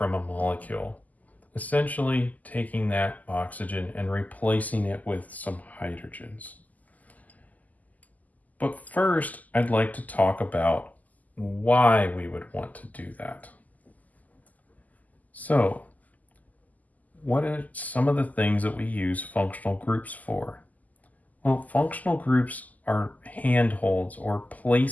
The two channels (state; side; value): late; right; 0.079 ms